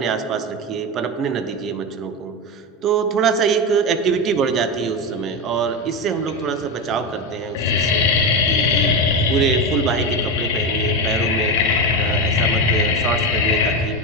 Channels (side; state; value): both; normal; correlation 0.16